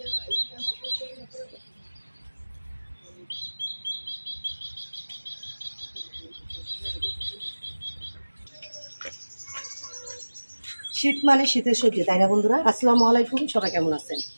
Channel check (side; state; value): both; inverted; correlation -1.00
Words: মানে শীতের সবজি, তাই না বন্ধুরা? আসসালামু আলাইকুম, সবাই কেমন আছেন?